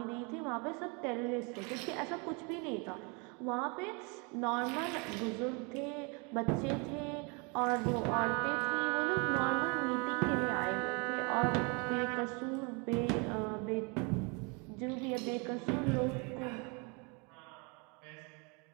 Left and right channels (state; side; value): quieter; left; 31.8 dB